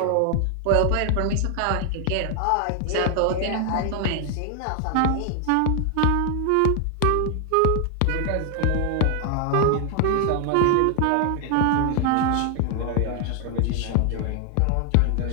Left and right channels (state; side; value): different; both; correlation 0.00